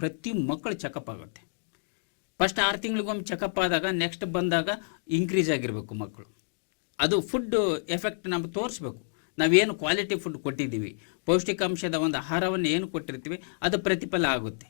ಮಕ್ಕಳು ಚೆಕಪ್ ಆಗುತ್ತೆ. ಫಸ್ಟ್ 6 ತಿಂಗಳಿಗೊಮ್ಮೆ ಚೆಕಪ್ ಆದಾಗ ನೆಕ್ಸ್ಟ್ ಬಂದಾಗ ಇನ್ಕ್ರೀಸ್ ಆಗಿರಬೇಕು ಮಕ್ಕಳು. ಅದು ಫುಡ್ ಎಫೆಕ್ಟ್ ನಮ್ಗೆ ತೋರಿಸ್ಬೇಕು. ನಾವೇನು ಕ್ವಾಲಿಟಿ ಫುಡ್ ಕೊಟ್ಟಿದ್ದೀವಿ, ಪೌಷ್ಟಿಕಾಂಶದ ಒಂದು ಆಹಾರವನ್ನು ಏನು ಕೊಟ್ಟಿರ್ತೀವಿ ಅದು ಪ್ರತಿಫಲ ಆಗುತ್ತೆ,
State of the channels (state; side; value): silent; right; digital silence